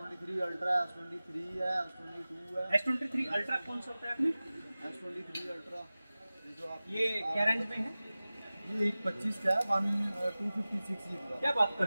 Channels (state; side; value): inverted; both; correlation -0.97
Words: अल्ट्रा है, S23 है, S22 है। S23 अल्ट्रा कौन सा होता है आपने? S23 अल्ट्रा जो आप ये क्या रेंज में है? ये 125 का है, 256 GB का। क्या बात कर